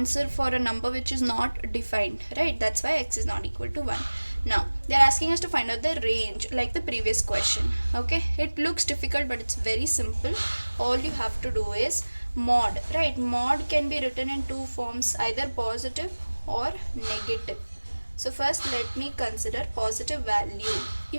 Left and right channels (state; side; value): inverted; both; correlation -1.00